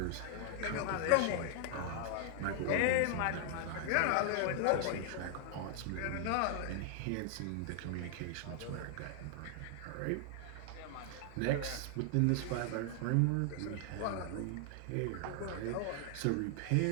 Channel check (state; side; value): different; both; correlation 0.00